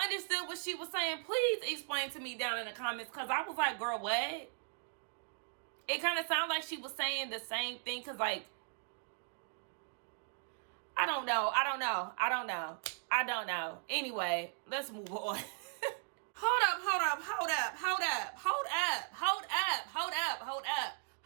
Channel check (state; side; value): silent; left; 53 dB below the other